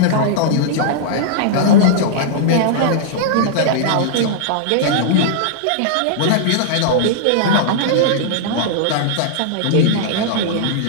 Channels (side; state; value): both; different; correlation -0.02